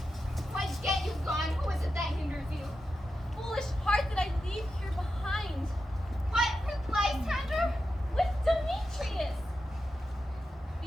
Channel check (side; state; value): both; normal; correlation 0.89